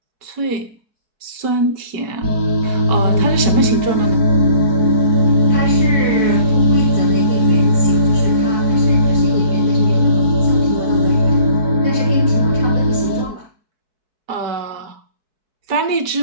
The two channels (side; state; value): left; late; 4.6 ms